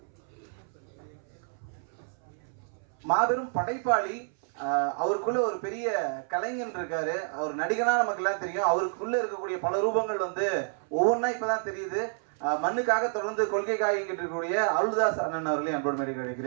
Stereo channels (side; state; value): left; silent; 58 dB below the other